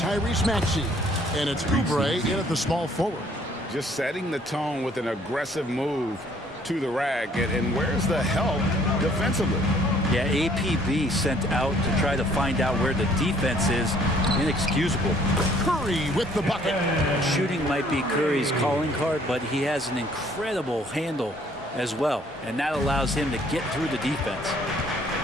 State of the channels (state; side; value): normal; both; correlation 0.60